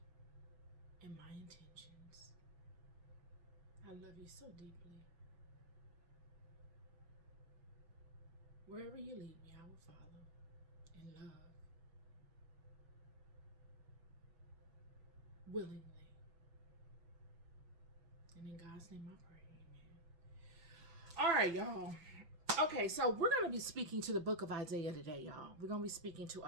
and my intentions. I love you so deeply. Wherever you lead me, I will follow in love, willingly. And in God's name I pray, amen. All right, y'all. Okay, so we're going to be speaking to the book of Isaiah today, y'all. We're going to be speaking to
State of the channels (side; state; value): left; late; 6.0 ms